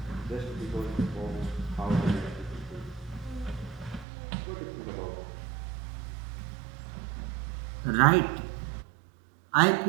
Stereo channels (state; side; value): drops out; left; at 4.0 s